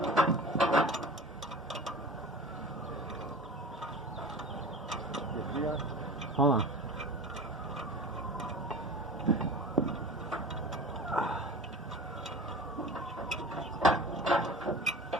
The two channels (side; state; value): both; normal; correlation 0.36